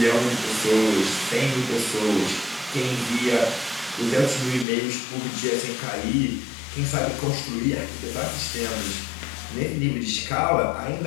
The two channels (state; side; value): drops out; right; at 4.7 s